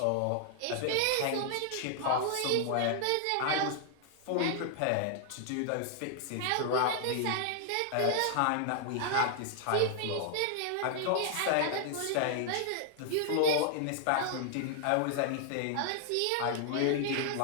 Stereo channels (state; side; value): different; both; correlation -0.01